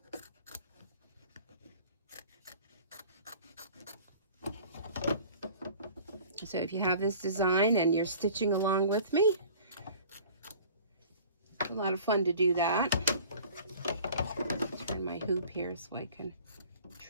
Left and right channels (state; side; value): inverted; both; correlation -0.46